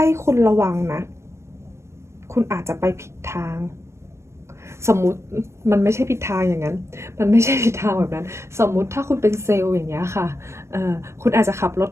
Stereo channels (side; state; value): left; late; 0.13 ms